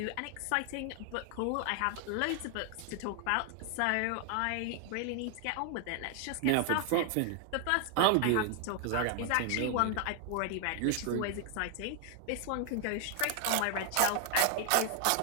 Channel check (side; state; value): both; different; correlation 0.00